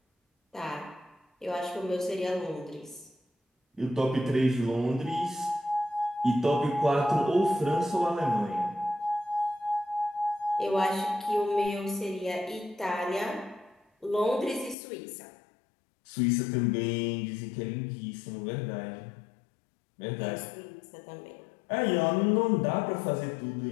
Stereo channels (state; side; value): drops out; right; at 14.8 s